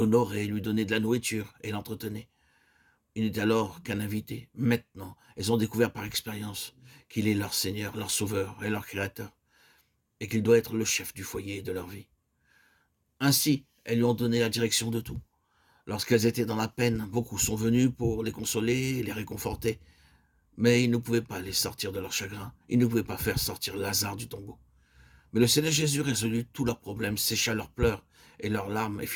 lui donnait de la nourriture et l'entretenait. Il n'était alors qu'un invité. Maintenant, elles ont découvert par expérience qu'il est leur Seigneur, leur Sauveur et leur Créateur, et qu'il doit être le chef du foyer et de leur vie. Ainsi, elles lui ont donné la direction de tout. Lorsqu'elles étaient dans la peine, beaucoup sont venus pour les consoler et les réconforter, mais ils ne pouvaient pas les sortir de leur chagrin, ils ne pouvaient pas faire sortir Lazare du tombeau. Mais le Seigneur Jésus résolut tous leurs problèmes, sécha leurs pleurs et leurs larmes et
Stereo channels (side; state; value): both; identical; correlation 1.00